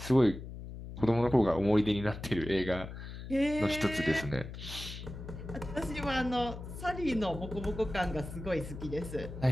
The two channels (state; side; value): noise; left; hum, 10 dB below the sound